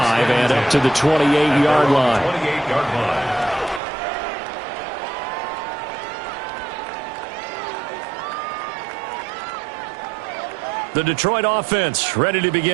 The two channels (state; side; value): drops out; left; at 3.8 s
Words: and up to the 28-yard line. 28-yard line. The Detroit offense ready to